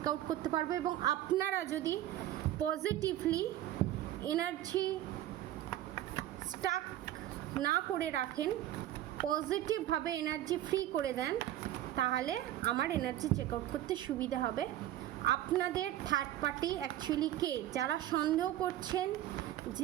আউট করতে পারবো, এবং আপনারা যদি পজিটিভলি এনার্জি স্টাক না করে রাখেন, পজিটিভভাবে এনার্জি ফ্রি করে দেন, তাহলে আমার এনার্জি চেক আউট করতে সুবিধা হবে। আপনাদের থার্ড পার্টি অ্যাকচুয়ালি কে? যারা সন্দেহ করছেন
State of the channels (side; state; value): left; quieter; 13.3 dB